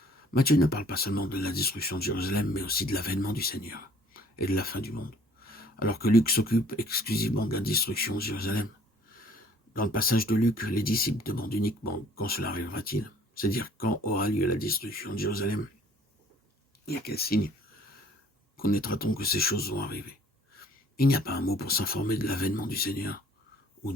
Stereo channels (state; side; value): normal; both; correlation 0.56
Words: Matthieu ne parle pas seulement de la destruction de Jérusalem, mais aussi de l'avènement du Seigneur et de la fin du monde. Alors que Luc s'occupe exclusivement de la destruction de Jérusalem. Dans le passage de Luc, les disciples demandent uniquement quand cela arrivera-t-il, c'est-à-dire quand aura lieu la destruction de Jérusalem. Et à quel signe connaîtra-t-on que ces choses vont arriver? Il n'y a pas un mot pour s'informer de l'avènement du Seigneur ou